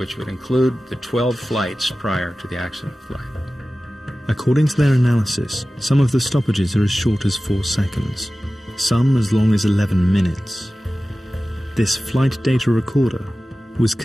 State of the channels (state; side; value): normal; both; correlation 0.96